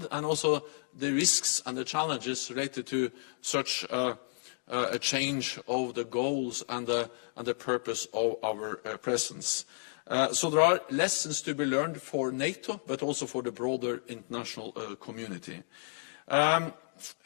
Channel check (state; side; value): silent; right; digital silence